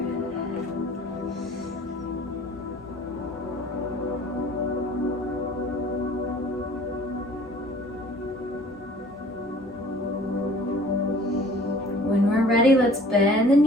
When we're ready, let's bend the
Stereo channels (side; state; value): both; normal; correlation 0.51